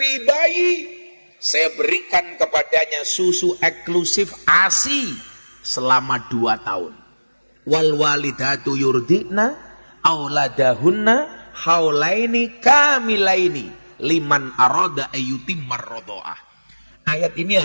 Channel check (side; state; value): both; inverted; correlation -1.00